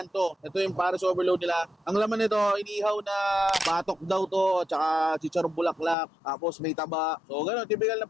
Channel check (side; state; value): right; drops out; at 6.0 s